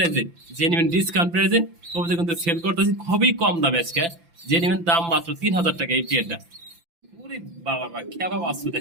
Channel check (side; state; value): left; late; 5.9 ms